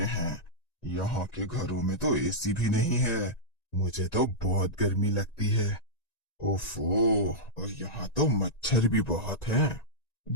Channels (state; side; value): late; right; 1.9 ms